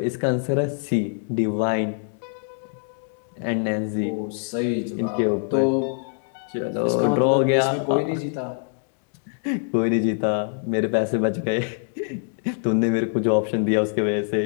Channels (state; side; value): silent; right; 60 dB below the other